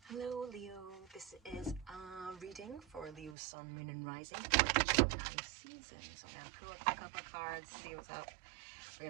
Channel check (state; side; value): drops out; left; at 3.4 s